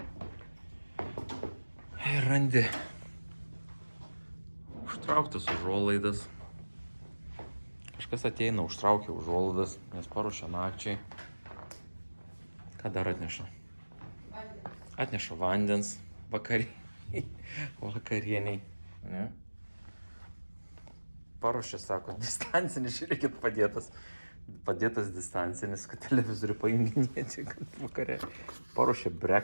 ir randi užtrauktas užuolaidas. Kažkas ateina, užtraukia užuolaidas, nes paruošia nakčiai. Ką dar atneša? Atneša vandens vakarieniai. Ne? Paruošia, sako, distancinis, žiūrėkit, padėtas distancinis, kad televizorių pajunginėti vakare. Paruošia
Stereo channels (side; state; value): both; inverted; correlation -1.00